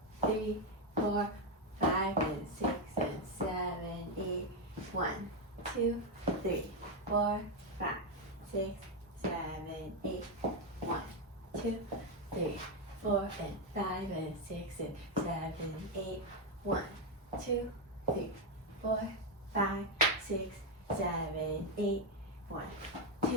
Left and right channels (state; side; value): normal; both; correlation 0.05